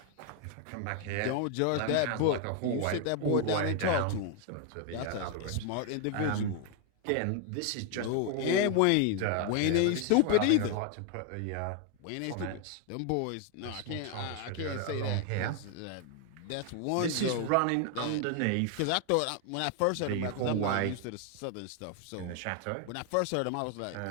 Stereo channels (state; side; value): different; both; correlation 0.01